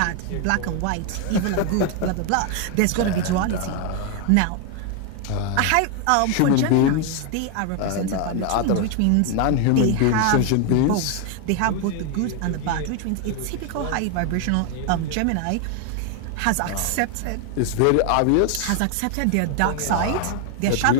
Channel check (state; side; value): different; both; correlation 0.01